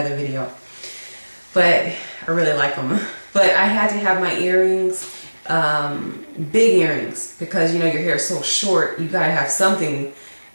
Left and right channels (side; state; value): both; inverted; correlation -1.00